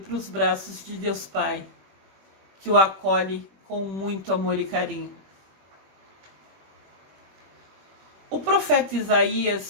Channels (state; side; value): late; left; 21 ms